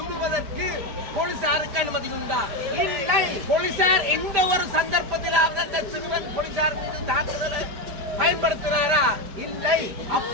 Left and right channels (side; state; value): left; late; 5.1 ms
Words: போலீசாருக்கு அனுமதி உண்டா? இல்லை. போலீசார் எந்த ஒரு சந்தர்ப்பத்திலாவது அந்த சிறுவன் போலீசார் மீது தாக்குதலை பயன்படுத்தினாரா? இல்லை.